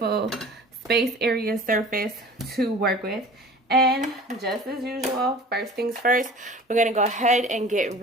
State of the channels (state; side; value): normal; both; correlation 0.43